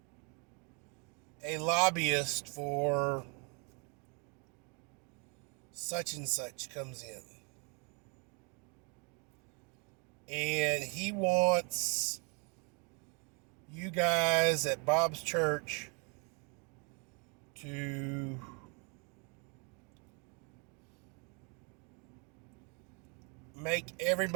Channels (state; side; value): quieter; left; 34.6 dB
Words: a lobbyist for such and such comes in, and he wants you guys at Bob's church to make